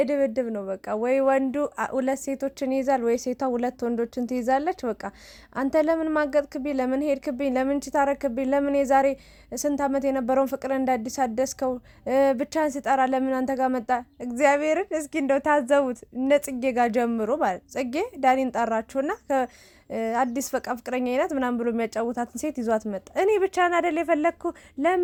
ነው በቃ። ወይ ወንዱ ሁለት ሴቶችን ይይዛል፣ ወይ ሴቷ ሁለት ወንዶችን ትይዛለች። በቃ አንተ ለምን ማገጥክብኝ? ለምን ሄድክብኝ? ለምን ችታረክብኝ? ለምን የዛሬ ስንት ዓመት የነበረውን ፍቅር እንደ አዲስ አደስከው? ብቻን ስጠራ ለምን አንተ ጋር መጣ? እግዚአብሔርን እስኪ እንደው ታዘቡት። እነ ጽጌ ጋር ጀምሮ ማለት ጽጌ ዳኒን ጠራችሁና አዲስ በቃ ፍቅረኛ አይነት ምናምን ብሎ የሚያጫውታትን ሴት ይዟት መጣ። እኔ ብቻን አይደል የፈለግኩ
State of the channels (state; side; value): identical; both; correlation 1.00